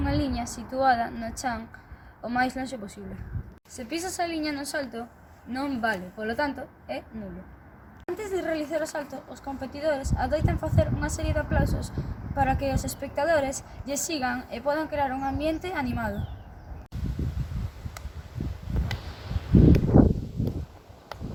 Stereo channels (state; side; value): identical; both; correlation 1.00